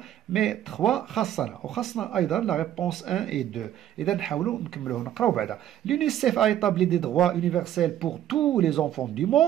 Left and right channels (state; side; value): quieter; left; 11.7 dB